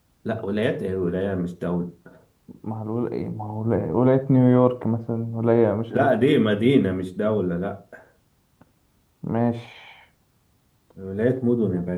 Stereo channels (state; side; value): identical; both; correlation 1.00